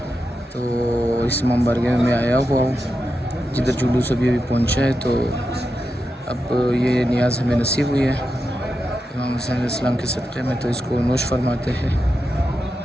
तो इस इमामबारगाह में आया हुआ हूँ जिधर जुलूस अभी पहुंचा है। तो अब ये नियाज़ हमें नसीब हुई है इमाम हुसैन इस्लाम के सदक़े में, तो इसको नोश फरमाते हैं।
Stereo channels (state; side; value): normal; both; correlation 0.88